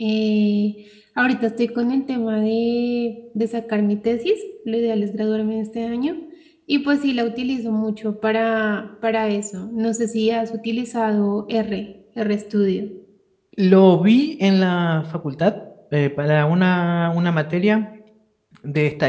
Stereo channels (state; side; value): identical; both; correlation 1.00